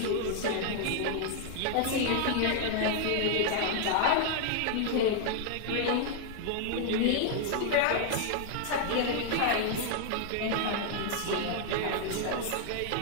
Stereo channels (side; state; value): both; different; correlation 0.00